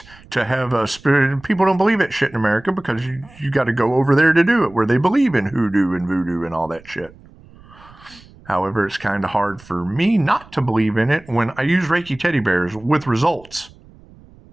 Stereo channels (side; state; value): right; noise; rumble, 24 dB below the sound